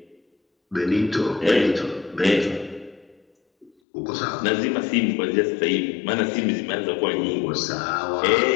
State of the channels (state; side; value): drops out; right; at 3.7 s